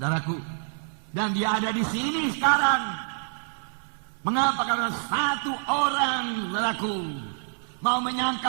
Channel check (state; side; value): silent; left; digital silence